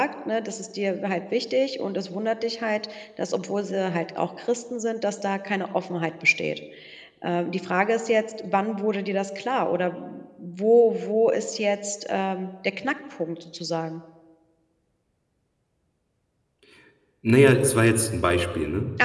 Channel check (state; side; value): identical; both; correlation 1.00